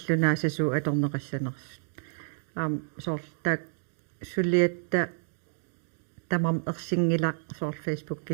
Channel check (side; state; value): left; silent; digital silence